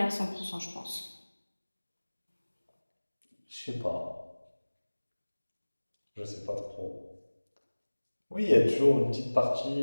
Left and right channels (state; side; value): inverted; both; correlation -1.00